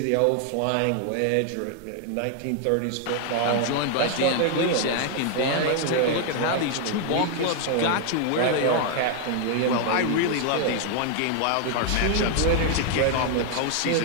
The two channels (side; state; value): both; different; correlation 0.00